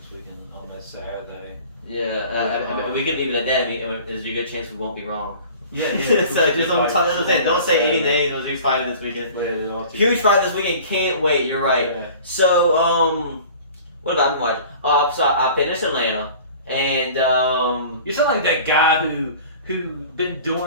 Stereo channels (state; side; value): inverted; both; correlation -0.44